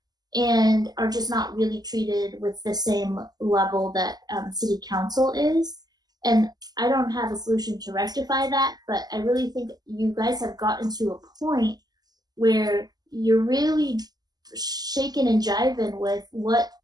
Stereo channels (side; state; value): left; late; 0.19 ms